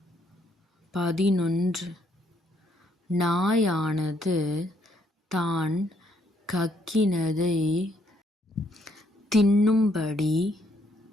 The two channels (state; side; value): normal; both; correlation 0.71